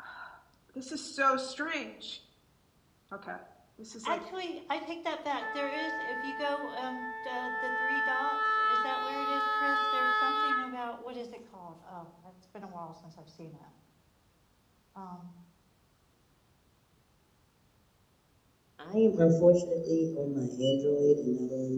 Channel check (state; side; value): identical; both; correlation 1.00